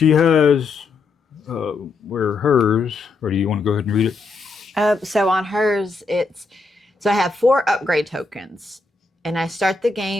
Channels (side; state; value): right; quieter; 3.8 dB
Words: has where hers, or do you want to go ahead and read it? So on hers, so I have 4 upgrade tokens, and I start the